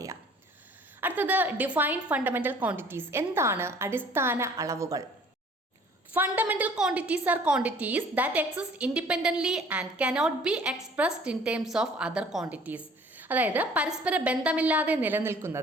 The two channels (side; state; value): both; normal; correlation 0.53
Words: അടുത്തത് ഡിഫൈൻ ഫണ്ടമെന്റൽ ക്വാണ്ടിറ്റീസ്. എന്താണ് അടിസ്ഥാന അളവുകൾ? Fundamental quantities R quantities that exist independently and cannot be expressed in terms of other quantities. അതായത് പരസ്പര ബന്ധമില്ലാതെ